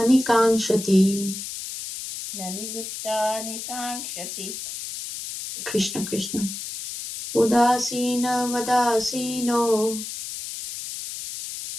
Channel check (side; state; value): left; noise; hiss, 8 dB below the sound